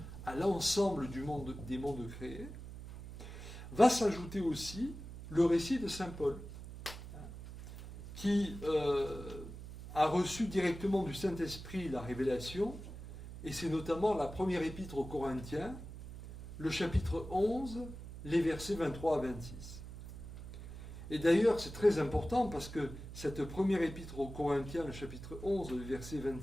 à l'ensemble des mondes créés, va s'ajouter aussi le récit de Saint Paul, qui a reçu directement du Saint-Esprit la révélation, et c'est notamment la première épître aux Corinthiens, le chapitre 11, les versets 23 à 26. Et d'ailleurs, c'est très important parce que cette première épître aux Corinthiens, le chapitre 11, les versets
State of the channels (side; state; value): right; noise; hum, 12 dB below the sound